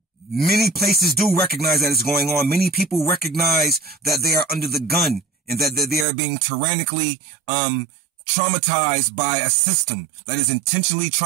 many places do recognize that it's going on. Many people recognize that they are under the gun and that they are being tyrannically traumatized by a system that is intentionally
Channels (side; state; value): left; drops out; at 6.1 s